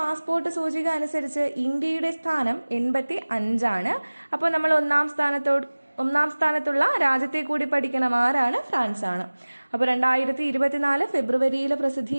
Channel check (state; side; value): inverted; both; correlation -1.00